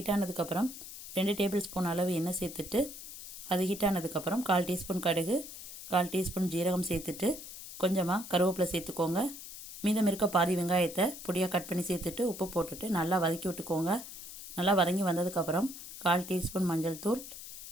ஆனதுக்கப்புறம் 2 டேபிள் ஸ்பூன் அளவு எண்ணெய் சேர்த்துட்டு அது ஹீட் ஆனதுக்கப்புறம் 1/4 டீஸ்பூன் கடுகு, 1/4 டீஸ்பூன் ஜீரகம் சேர்த்துட்டு கொஞ்சமாக கருவேப்பிலை சேர்த்துக்கோங்க. மீதம் இருக்க பாதி வெங்காயத்தை பொடியாக கட் பண்ணி சேர்த்துட்டு உப்பு போட்டுட்டு நல்லா வதக்கி விட்டுக்கோங்க. நல்லா வதங்கி வந்ததுக்கப்புறம் 1/4 டீஸ்பூன் மஞ்சள் தூள்,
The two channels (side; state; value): left; noise; hiss, 12 dB below the sound